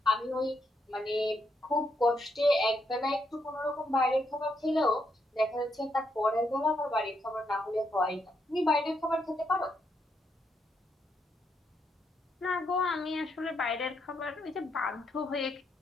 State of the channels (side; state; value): both; normal; correlation 0.78